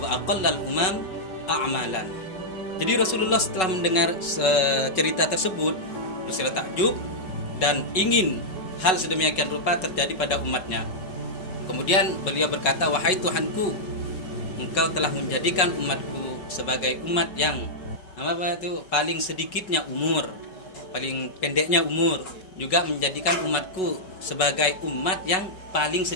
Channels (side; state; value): right; late; 5.4 ms